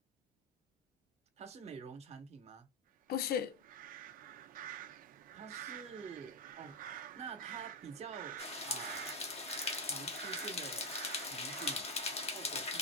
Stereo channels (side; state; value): both; normal; correlation 0.05